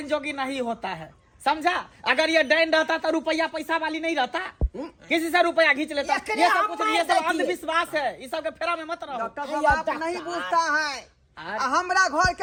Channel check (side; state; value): both; identical; correlation 1.00